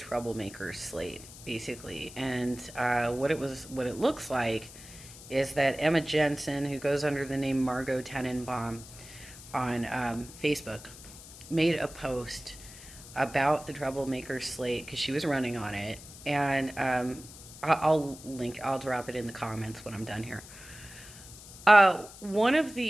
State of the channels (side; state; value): left; noise; hiss, 17 dB below the sound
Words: slate, basically, and what it looks like is that Emma Jensen, who goes under the name Margot Tenenbaum on Facebook, made a post about the troublemakers slate because she was running on it, and I'll drop it in the comments when I'm done here. One of